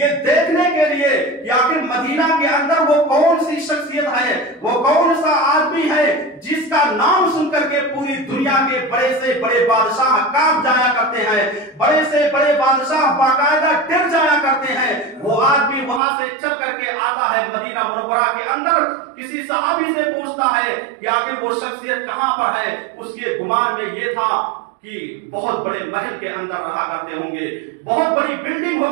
देखने के लिए कि आखिर मदीना के अंदर वो कौन सी शख्सियत है, वो कौन सा आदमी है जिसका नाम सुन करके पूरी दुनिया के बड़े से बड़े बादशाह कांप जाया करते हैं, बड़े से बड़े बादशाह बाकायदा डर जाया करते हैं। वो आदमी वहां से चल करके आता है मदीना मुनव्वरा के अंदर, किसी सहाबी से पूछता है कि आखिर वो शख्सियत कहां पर है। उसके गुमान में ये था कि बहुत बड़े महल के अंदर रहा करते होंगे, बहुत बड़ी बिल्डिंग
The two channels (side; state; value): left; drops out; at 16.0 s